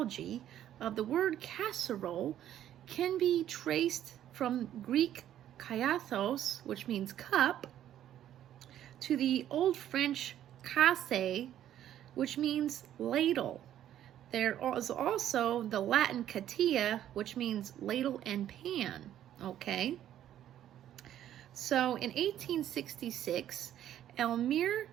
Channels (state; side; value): quieter; left; 11.4 dB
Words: of the word casserole can be traced from Greek kaiathos, which means cup, to the Old French casse, which means ladle. There is also the Latin catia, which means ladle and pan, okay? So in 1866, Elmire